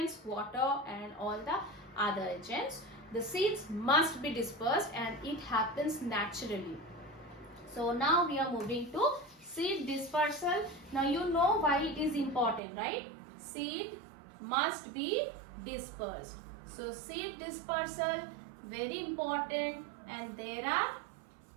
water and all the other agents, the seeds must be dispersed, and it happens naturally. So now we are moving to seed dispersal. Now you know why it is important, right? Seed must be dispersed. So seed dispersal, very important, and there are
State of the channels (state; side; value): drops out; left; at 12.6 s